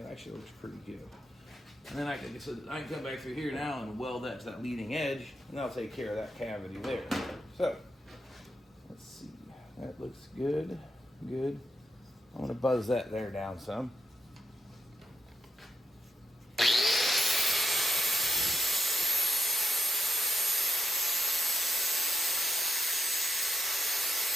actually looks pretty good. And then I can come back through here now and weld that to that leading edge, and that'll take care of that cavity there. So let's see, that looks good. I'm gonna buzz that there down some.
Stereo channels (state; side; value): normal; both; correlation 0.81